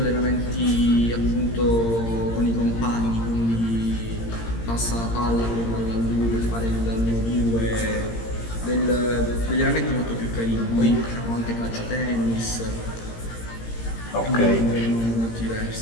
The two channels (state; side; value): late; right; 17 ms